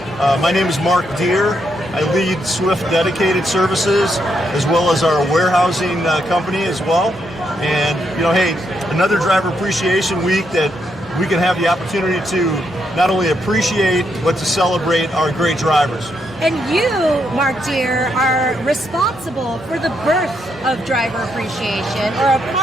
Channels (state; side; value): normal; both; correlation 0.78